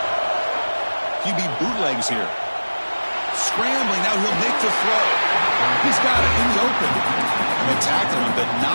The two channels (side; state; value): both; inverted; correlation -1.00